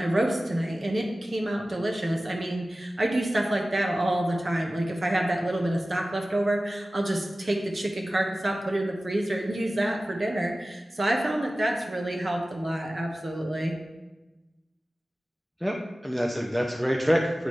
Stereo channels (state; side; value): normal; both; correlation 0.96